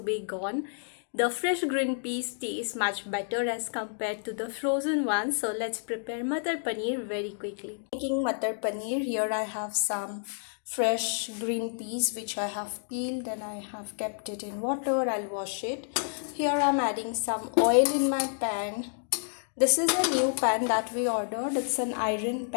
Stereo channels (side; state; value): right; silent; digital silence